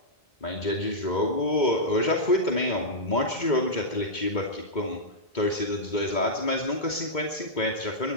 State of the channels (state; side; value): late; right; 2.2 ms